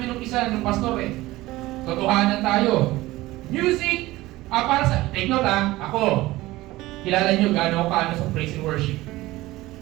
ng isa, ng pastor eh. Totohanan tayo. Music, para sa, take note ako, kilala nyo gaano ako kaano sa praise and worship.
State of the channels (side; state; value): left; quieter; 18.3 dB